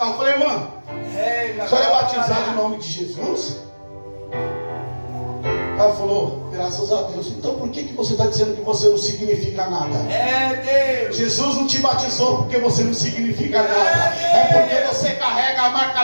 Eu falei, irmã, a senhora é batizada em nome de Jesus? Ela falou, graças a Deus. Então por que você está dizendo que você não significa nada? Jesus não te batizou porque você não significa nada. É porque você carrega a marca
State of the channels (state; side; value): inverted; both; correlation -1.00